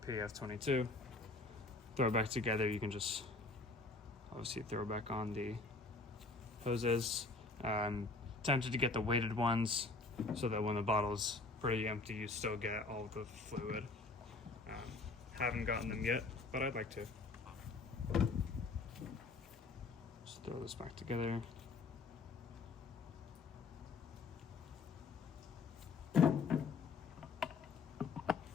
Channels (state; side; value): quieter; right; 3.7 dB